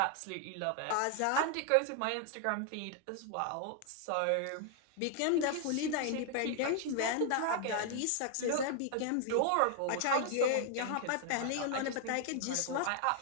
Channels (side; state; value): both; different; correlation 0.00